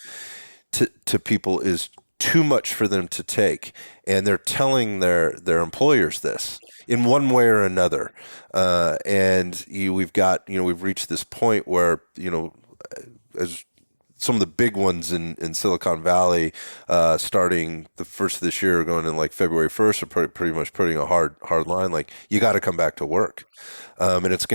to people is too much for them to take. And they're telling their employers this in one way or another. We've reached this point where, as some of the big ones in Silicon Valley, starting the first of this year, going in like February 1st, are pretty much putting a hard line. Like, you got to come back to work. Right. And it's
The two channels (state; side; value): inverted; both; correlation -1.00